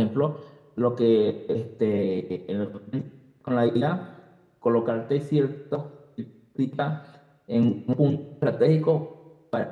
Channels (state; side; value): identical; both; correlation 1.00